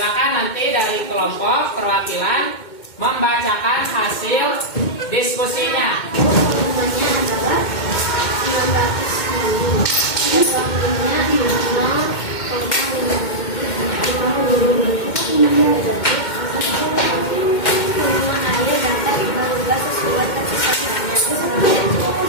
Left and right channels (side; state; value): right; late; 2.2 ms